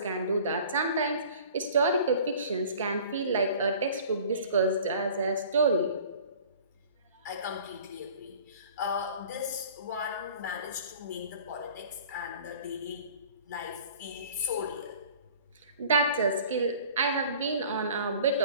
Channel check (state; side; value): inverted; both; correlation -0.47